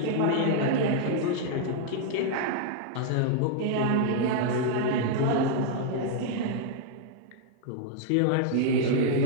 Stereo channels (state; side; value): different; both; correlation -0.01